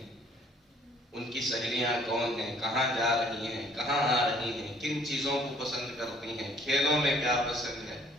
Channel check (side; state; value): both; normal; correlation 0.59